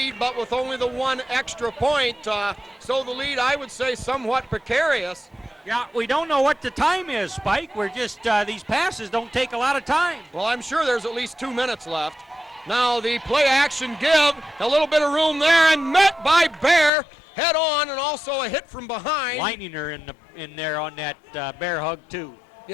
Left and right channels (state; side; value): drops out; right; at 16.9 s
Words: but with only the 1 extra point. So the lead, I would say, somewhat precarious. Yeah, we don't know what the time is, Spike. We're just, these passes don't take a lot of time. Well, I'm sure there's at least 2 minutes left. Now the play action give, a little bit of room there, and met by Bear head on, and also a hit from behind. Leininger in there on that bear hug, too.